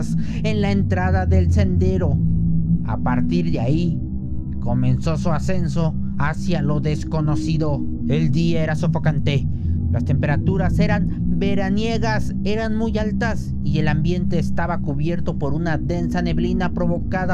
en la entrada del sendero. A partir de ahí, comenzó su ascenso hacia lo desconocido. El día era sofocante. Las temperaturas eran veraniegas, eran muy altas y el ambiente estaba cubierto por una densa neblina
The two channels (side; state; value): both; identical; correlation 1.00